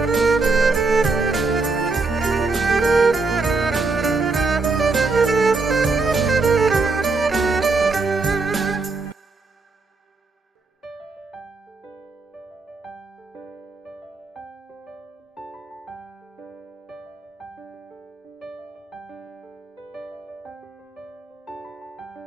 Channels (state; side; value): quieter; left; 3.8 dB